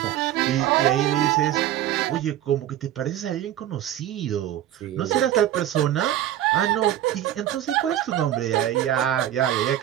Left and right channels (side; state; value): left; quieter; 12.1 dB